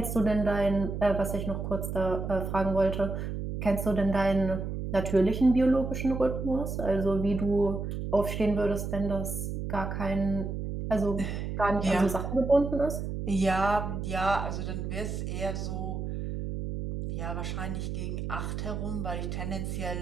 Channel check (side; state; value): right; noise; hum, 4 dB below the sound